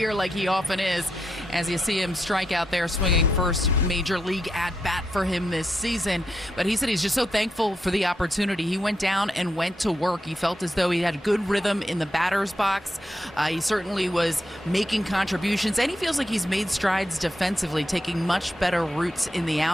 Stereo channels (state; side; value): normal; both; correlation 0.83